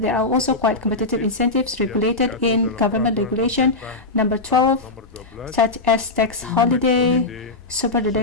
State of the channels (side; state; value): right; quieter; 3.3 dB